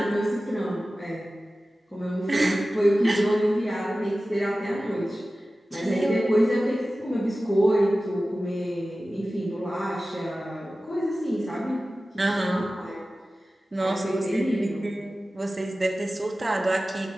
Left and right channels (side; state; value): both; normal; correlation 0.96